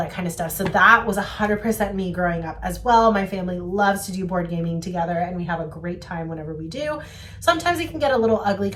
kind of stuff. So that was 100% me growing up as well. My family loves to do board gaming together, and we have a great time whenever we do. Sometimes it can get a little ugly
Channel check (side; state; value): both; identical; correlation 1.00